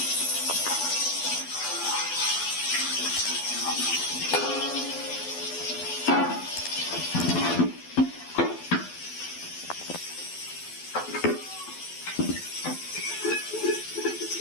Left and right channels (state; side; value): late; right; 12 ms